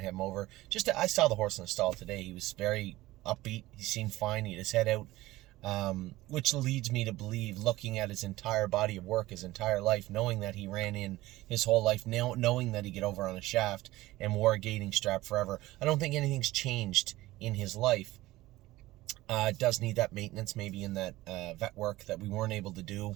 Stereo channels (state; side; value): quieter; left; 17.7 dB